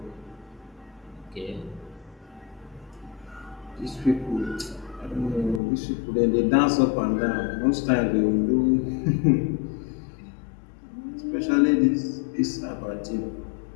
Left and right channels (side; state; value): right; drops out; at 5.6 s